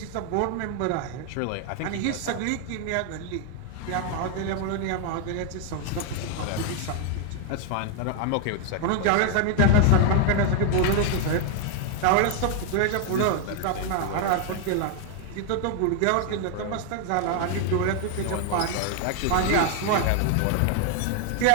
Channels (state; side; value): different; both; correlation 0.00